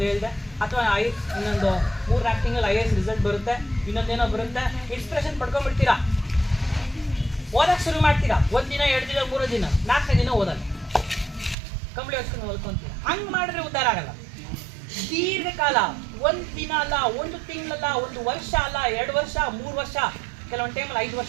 ಹೇಳಿದೆ, ಅಥವಾ ಇನ್ನೊಂದು 3-4 ತಿಂಗಳು IAS ರಿಸಲ್ಟ್ ಬರುತ್ತೆ, ಇನ್ನೊಂದೇನೋ ಬರುತ್ತೆ, ಇನ್ಸ್ಪಿರೇಷನ್ ಪಡ್ಕೊಂಡ್ಬಿಡ್ತೀರಾ, ಓದಕ್ಕೆ ಶುರು ಮಾಡ್ತೀರಾ. 1 ದಿನ 2 ದಿನ 3 ದಿನ 4ನೇ ದಿನ ಓದಲ್ಲ, ಕಂಬಳಿ ಹೊಚ್ಕೊಂಡು ಓದ್ಕೊಂತೀರಾ. ಹಂಗೆ ಮಾಡಿದ್ರೆ ಉದ್ಧಾರ ಆಗಲ್ಲ. ದೀರ್ಘಕಾಲ 1 ದಿನ ಅಲ್ಲ, 1 ತಿಂಗಳಲ್ಲ, 1 ವರ್ಷ ಅಲ್ಲ, 2 ವರ್ಷ 3 ವರ್ಷ, ಕೆಲವೊಂದು ಟೈಮಲ್ಲಿ 5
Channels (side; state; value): left; drops out; at 11.6 s